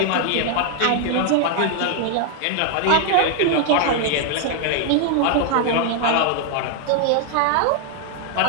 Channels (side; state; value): both; different; correlation 0.00